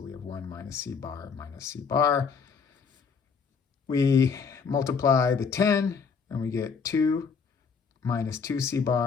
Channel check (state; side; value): quieter; right; 5.7 dB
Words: we have 1 minus C bar minus C bar. We multiply the 10, and we get 2 minus 2 C